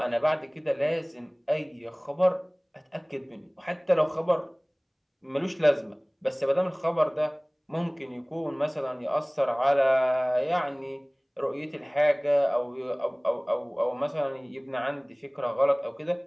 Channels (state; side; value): identical; both; correlation 1.00